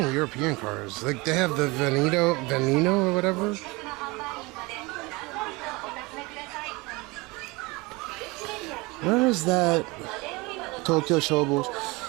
European cars. Like they have the Veneno or whatever. Where is that? Tokyo Shobo.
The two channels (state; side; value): quieter; left; 24.5 dB